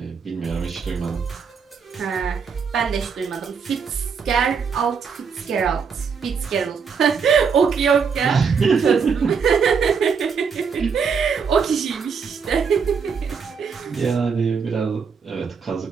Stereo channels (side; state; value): left; quieter; 6.0 dB